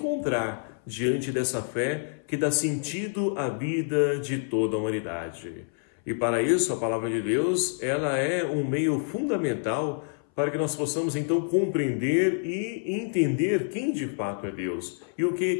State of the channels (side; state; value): right; silent; 59 dB below the other